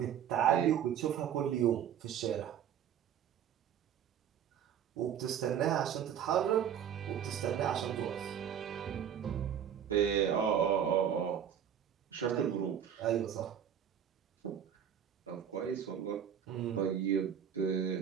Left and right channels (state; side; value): quieter; left; 8.9 dB